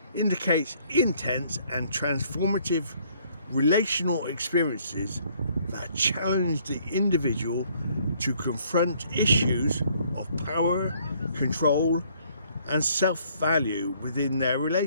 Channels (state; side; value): inverted; both; correlation -0.64